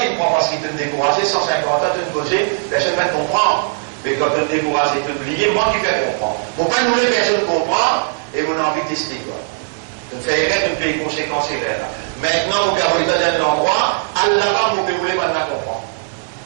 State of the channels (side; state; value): left; silent; 67 dB below the other